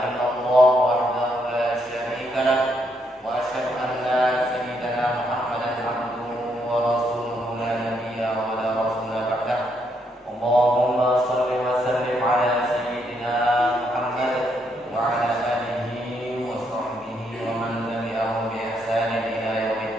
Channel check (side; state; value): both; normal; correlation 0.75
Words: illallah wahdahu la syarika lah wa asyhadu anna sayyidana Muhammadan abduhu wa rasuluhu la nabiyya wa la rasula ba'dah. Allahumma shalli wa sallim ala sayyidina Muhammad wa ala alihi wa sahbihi wa man tabi'ahum bi ihsanin ila